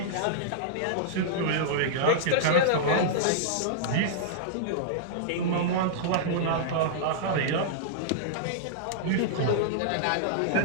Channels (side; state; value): both; different; correlation -0.02